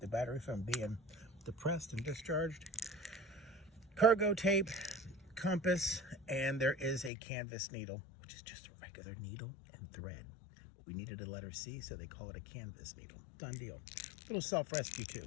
battery from being depressed and discharged. Cargo tape, compass, and there is a canvas needle, which is just a regular needle and thread. We needed a letter C, so they call it a canvas needle. Done deal. Little self-rescue too.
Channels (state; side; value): drops out; right; at 7.1 s